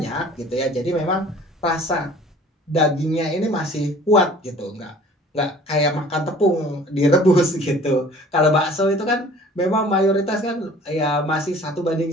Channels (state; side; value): normal; both; correlation 0.49